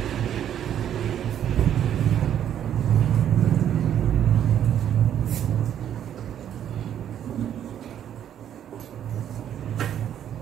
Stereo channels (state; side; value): quieter; left; 10.0 dB